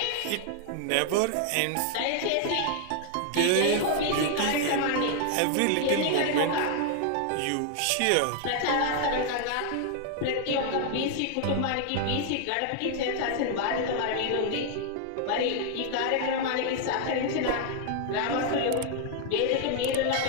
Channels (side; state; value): both; different; correlation 0.00